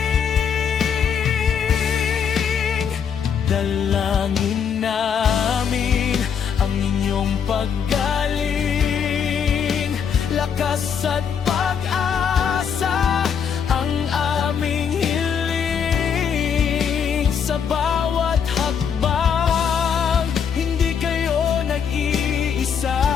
Dalangin namin ang inyong paggaling, lakas at pag-asa ang aming hiling. Sa bawat hakbang, hindi kayo nag-iisa,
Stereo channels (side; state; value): right; quieter; 7.3 dB